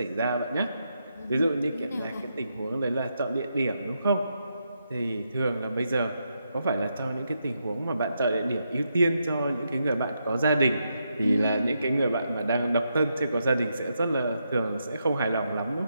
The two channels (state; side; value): inverted; both; correlation -0.82